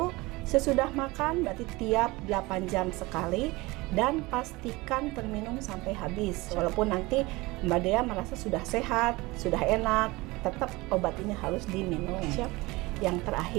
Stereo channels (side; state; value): left; quieter; 22.2 dB